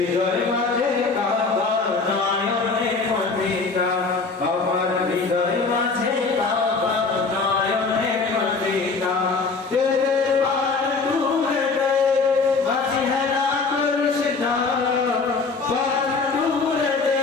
মাঝে কাবা নয়নে মদিনা, আমার হৃদয় মাঝে কাবা নয়নে মদিনা। তেরে পার তুলে দে মাঝি হেলা করিস না, পার তুলে দে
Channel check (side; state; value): right; quieter; 4.3 dB